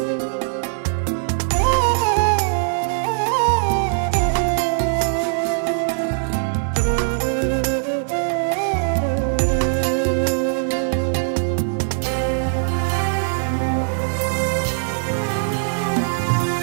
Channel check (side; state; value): left; silent; digital silence